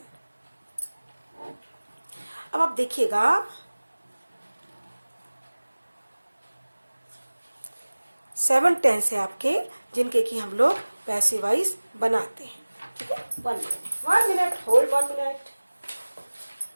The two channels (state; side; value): inverted; both; correlation -1.00